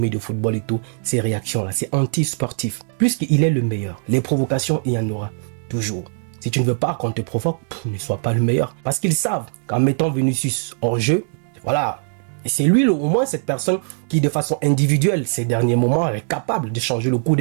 de football et tout. Ces réactions-là, c'est anti-sportif. Puisqu'il est le meilleur, les provocations, il y en aura toujours. Si tu ne veux pas qu'on te provoque, ne sois pas le meilleur. Parce qu'ils savent qu'en mettant Vinicius hors jeu, voilà. Et c'est lui, au moins, cette personne qui, de façon individuelle, ces derniers moments, est capable de changer le cours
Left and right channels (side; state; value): left; silent; digital silence